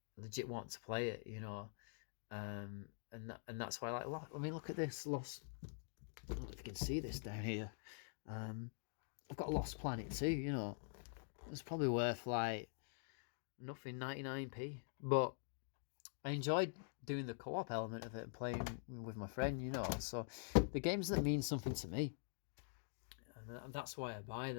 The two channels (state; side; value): silent; right; digital silence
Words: legit want to play it. And that's why I like. I mean, look at this Lost. I don't know if you can see this down here. Um, I've got Lost Planet too. It's probably worth like nothing, 99p. But I enjoyed doing the co-op element of it and playing with my friend. So the games that mean something to me, and that's why I buy